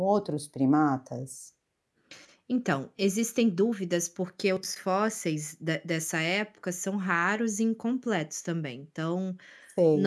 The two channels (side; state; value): both; identical; correlation 1.00